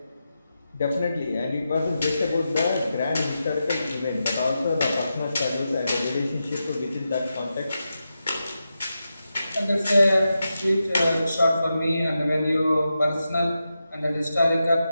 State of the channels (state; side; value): inverted; both; correlation -0.89